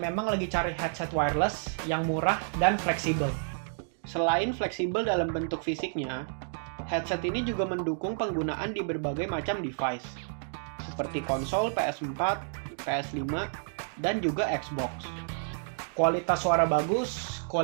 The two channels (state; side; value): silent; left; digital silence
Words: lagi cari headset wireless yang murah dan fleksibel. Selain fleksibel dalam bentuk fisiknya, headset ini juga mendukung penggunaan di berbagai macam device, seperti konsol PS4, PS5, dan juga Xbox. Kualitas suara bagus,